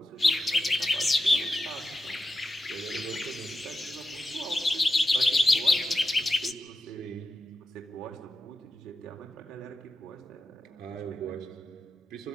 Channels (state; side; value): normal; both; correlation 0.88